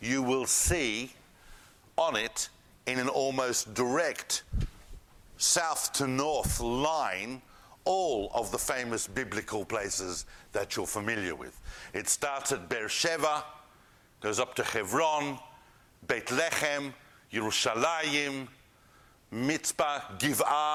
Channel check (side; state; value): both; identical; correlation 1.00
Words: will see on it, in an almost direct south to north line, all of the famous biblical places that you're familiar with. It starts at Beersheba, goes up to Hebron, Beit Lechem, Yerushalayim, Mitzpah,